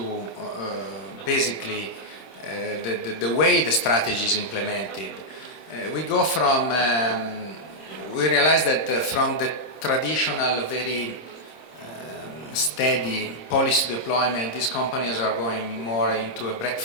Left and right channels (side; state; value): right; late; 26 ms